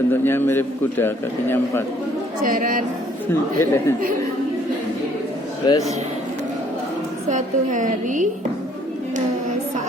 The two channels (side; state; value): both; normal; correlation 0.62